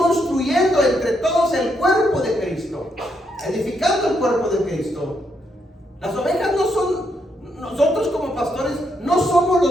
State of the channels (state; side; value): normal; both; correlation 0.78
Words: entre todos el cuerpo de Cristo, edificando el cuerpo de Cristo. Las ovejas no son, nosotros como pastores no somos